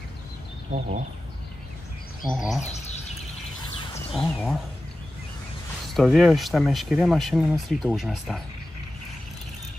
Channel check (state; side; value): normal; both; correlation 0.94